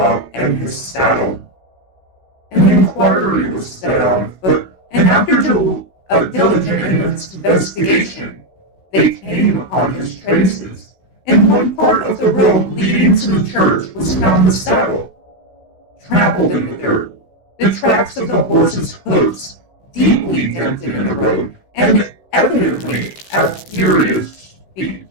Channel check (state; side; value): late; right; 16 ms